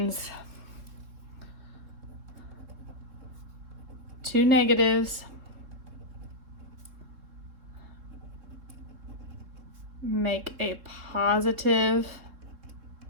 two negatives make a positive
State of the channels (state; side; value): late; left; 3.5 ms